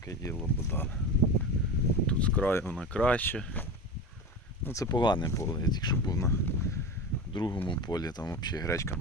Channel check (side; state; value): both; normal; correlation 0.26